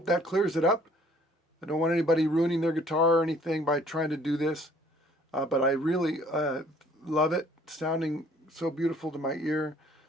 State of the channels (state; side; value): normal; both; correlation 0.58